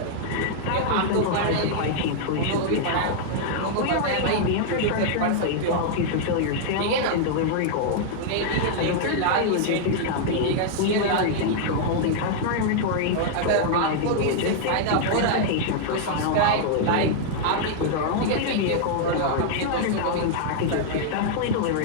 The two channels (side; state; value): both; different; correlation -0.01